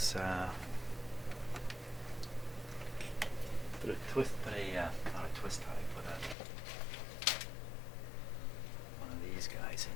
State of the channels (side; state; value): right; drops out; at 6.4 s